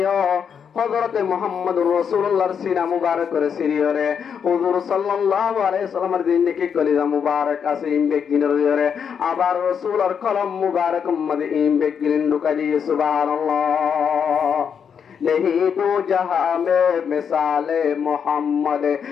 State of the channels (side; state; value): right; quieter; 7.2 dB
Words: হযরত মুহাম্মদ রাসূলুল্লাহর সিনা মুবারক করে সিরিয়রে হুজুর সাল্লাল্লাহু আলাইহি সাল্লামের জিন্দেগি কলিজা মুবারক আছে ইমবে গিনরে আবার রাসূলের কলম মুবারক মধ্যে ইমবে গিন ঢুকাই দিয়ে সুবহানাল্লাহ। नहीं तो जहां में मिसाले मोहम्मद